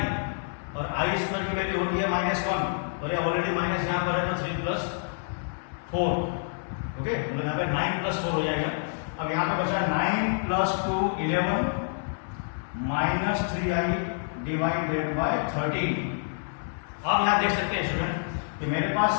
और आई स्क्वायर की वैल्यू होती है -1 और ये ऑलरेडी माइनस यहाँ पर है तो 3 प्लस 4। ओके, मतलब यहाँ पे 9 प्लस 4 हो जाएगा। अब यहाँ पे बचा 9 plus 2 11 minus 3i divided by 13। अब यहाँ देख सकते हैं स्टूडेंट कि मेरे पास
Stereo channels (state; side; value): silent; right; 57 dB below the other